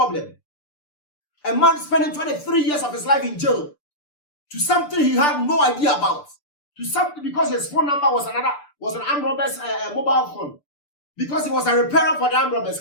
A man spending 23 years of his life in jail to something he had no idea about, to something because his phone number was an armed robber's mobile phone, because he was a repairer for the armed robbers.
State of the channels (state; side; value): late; right; 6.8 ms